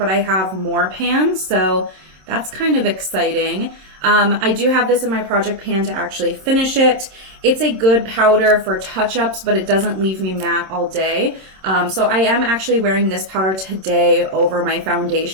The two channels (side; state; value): left; late; 27 ms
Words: I have more pan, so that's kind of exciting. I do have this in my project pan to actually finish it. It's a good powder for touch-ups, but it doesn't leave me matte all day. So I am actually wearing this powder today over my